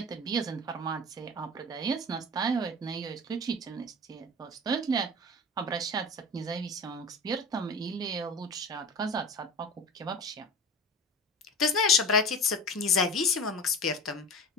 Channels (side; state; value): both; normal; correlation 0.34